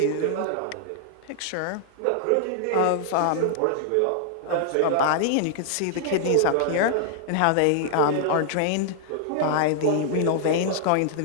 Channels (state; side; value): different; both; correlation -0.01